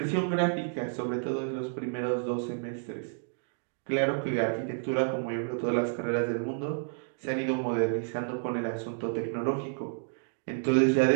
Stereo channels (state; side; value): silent; left; digital silence